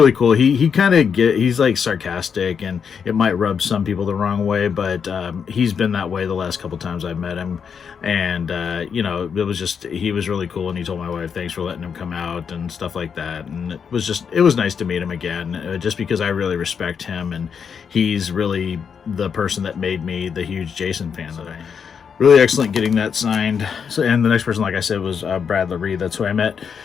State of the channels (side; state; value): right; quieter; 6.8 dB